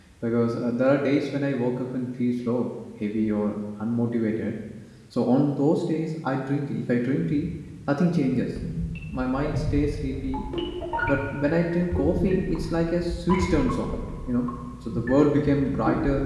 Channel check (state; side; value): identical; both; correlation 1.00